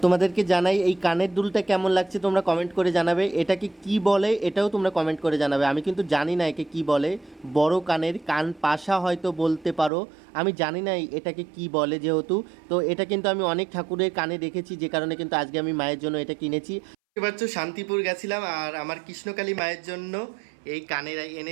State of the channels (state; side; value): drops out; left; at 9.9 s